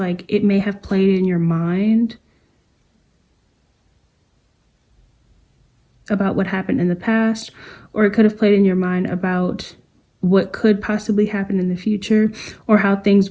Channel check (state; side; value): identical; both; correlation 1.00